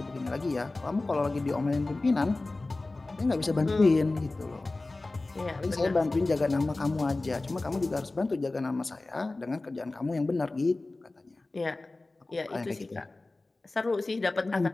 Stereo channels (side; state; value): right; quieter; 3.1 dB